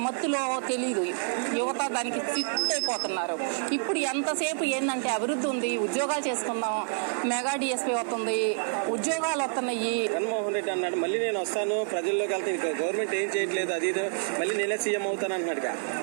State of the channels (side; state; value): left; silent; digital silence